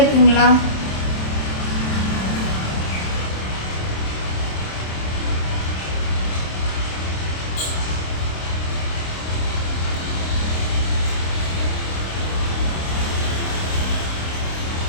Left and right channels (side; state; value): right; late; 27 ms